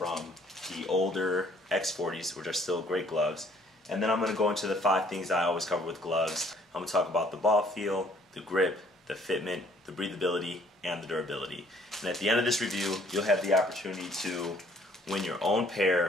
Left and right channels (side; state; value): both; normal; correlation 0.61